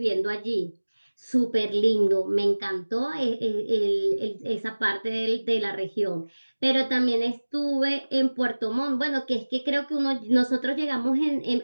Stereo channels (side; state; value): both; inverted; correlation -1.00